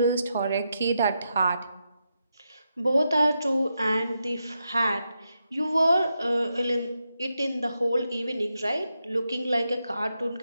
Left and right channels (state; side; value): inverted; both; correlation -0.85